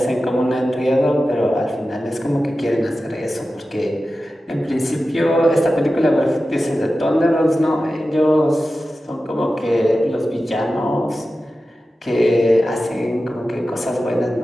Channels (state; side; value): normal; both; correlation 0.94